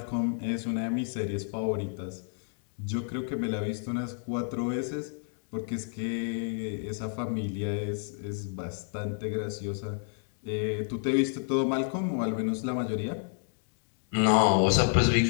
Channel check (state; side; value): silent; right; 58 dB below the other